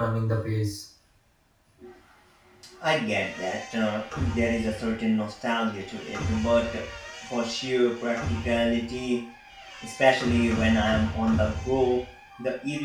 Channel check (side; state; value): both; identical; correlation 1.00